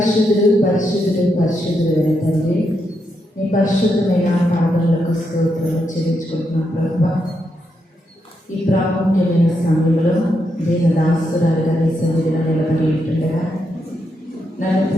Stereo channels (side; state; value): both; normal; correlation 0.82